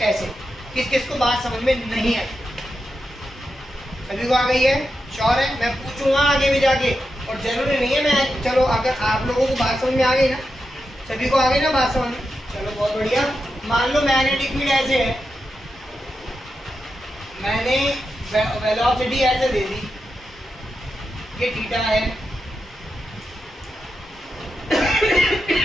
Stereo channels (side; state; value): both; normal; correlation 0.88